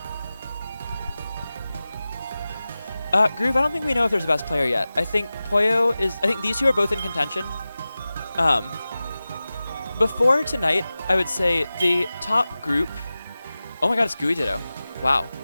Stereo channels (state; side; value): inverted; both; correlation -0.96